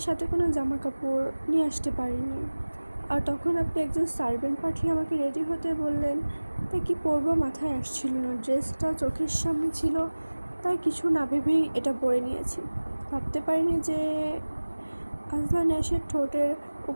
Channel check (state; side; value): inverted; both; correlation -1.00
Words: সাথে কোনো জামা কাপড় নিয়ে আসতে পারিনি। আর তখন আপনি একজন সার্ভেন্ট পাঠিয়ে আমাকে রেডি হতে বললেন, তাই কি পরবো মাথায় আসছিল না। ড্রেসটা চোখের সামনে ছিল, তাই কিছু না ভেবেই এটা পরে নিয়েছি। ভাবতে পারিনি যে আজলান এসে ঠোঁটের